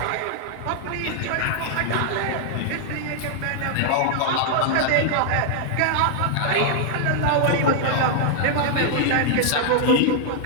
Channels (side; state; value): both; different; correlation -0.01